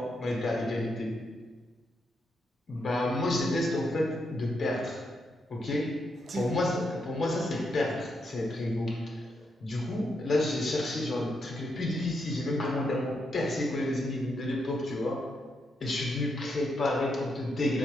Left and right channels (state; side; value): normal; both; correlation 0.81